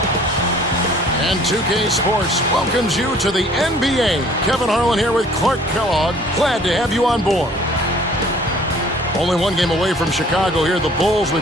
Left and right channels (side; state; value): both; normal; correlation 0.54